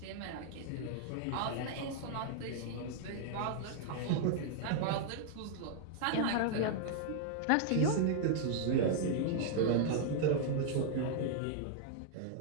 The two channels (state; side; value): different; both; correlation -0.01